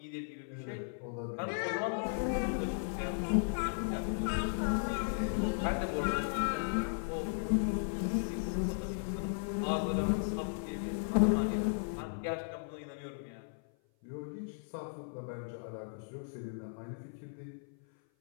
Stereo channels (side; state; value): right; silent; 54 dB below the other